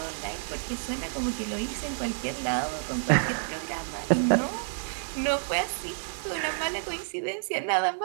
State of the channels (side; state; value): left; silent; digital silence